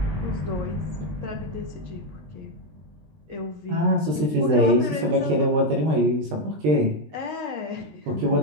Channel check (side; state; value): left; late; 20 ms